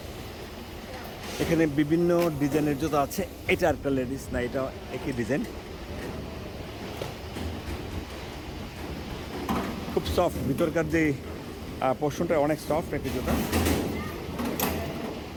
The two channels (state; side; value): identical; both; correlation 1.00